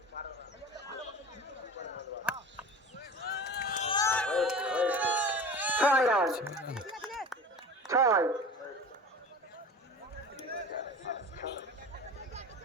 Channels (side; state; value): both; normal; correlation 0.36